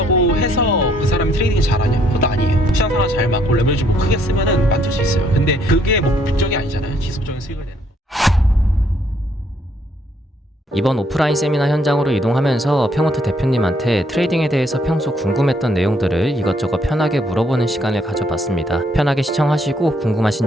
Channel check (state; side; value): normal; both; correlation 0.68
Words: 해서 그 사람이 트레이딩 잘하냐? 그것도 아니에요. 시장 상황 잘 맞고 레버리지 뭐 크게 쓰면은 만들 수 있어요. 근데 그게 목적이 아니잖아요. 지속적인 수익을 내는. 이번 오프라인 세미나 현장으로 이동하면서 평호트 대표님한테 트레이딩에 대해서 평소 궁금했던 내용들을 이것저것 편하게 물어보는 시간을 가져봤습니다. 편하게 시청하시고 궁금하신